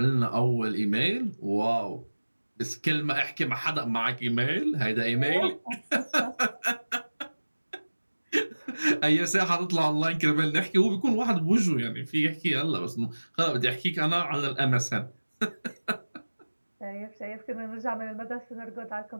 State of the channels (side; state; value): both; inverted; correlation -1.00